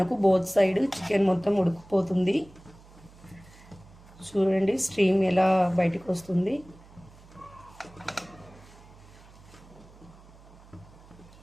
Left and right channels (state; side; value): noise; right; hum, 23 dB below the sound